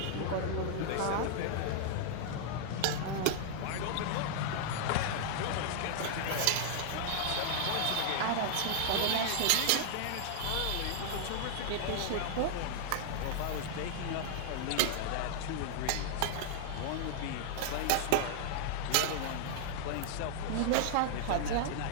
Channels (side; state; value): both; different; correlation -0.01